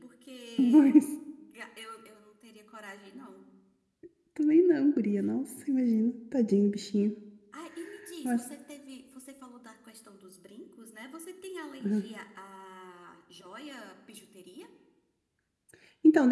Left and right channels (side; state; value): both; identical; correlation 1.00